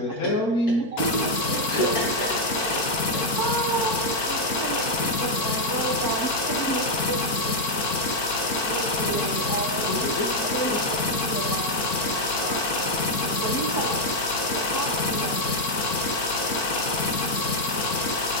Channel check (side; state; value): right; late; 4.4 ms